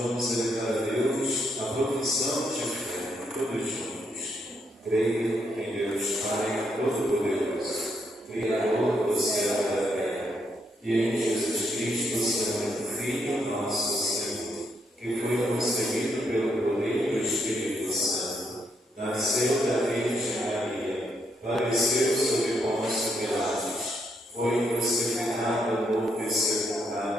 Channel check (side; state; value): both; normal; correlation 0.76